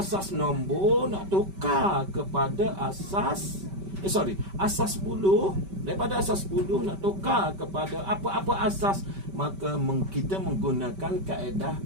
nombor nak tukar kepada asas asas 10. Daripada asas 10 nak tukar kepada apa-apa asas, maka kita menggunakan kaedah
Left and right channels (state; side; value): late; left; 5.2 ms